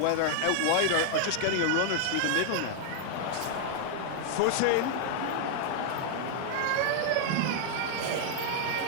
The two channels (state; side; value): different; both; correlation 0.00